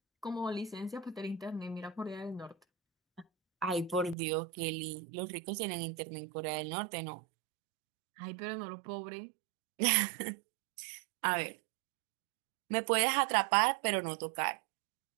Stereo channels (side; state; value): left; drops out; at 4.2 s